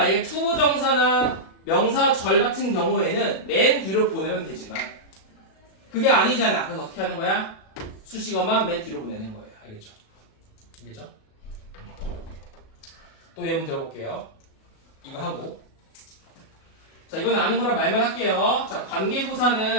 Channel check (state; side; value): late; right; 37 ms